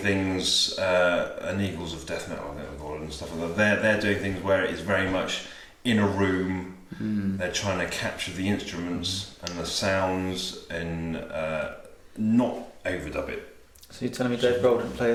and Eagles of Death Metal, I think we call it, and stuff like that. They're doing things where it is very much in a room. They're trying to capture the instruments and the sounds and not overdub it. So you're telling me Dave Grohl didn't play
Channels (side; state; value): both; identical; correlation 1.00